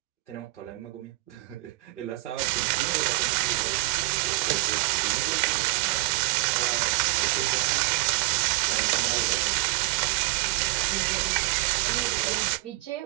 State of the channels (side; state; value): left; quieter; 21.4 dB